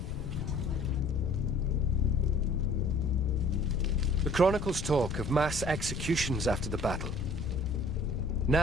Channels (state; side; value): noise; left; rumble, 7 dB below the sound